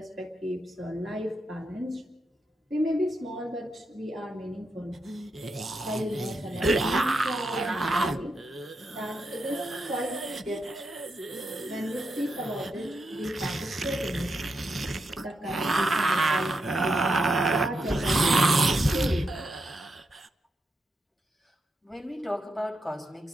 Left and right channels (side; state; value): both; normal; correlation 0.84